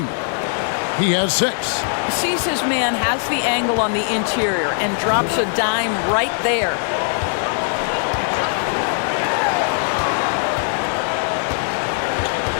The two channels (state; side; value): silent; right; 56 dB below the other